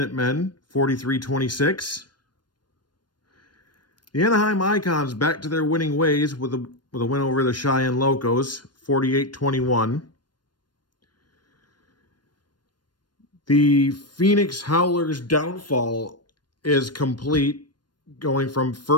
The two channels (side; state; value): right; late; 0.71 ms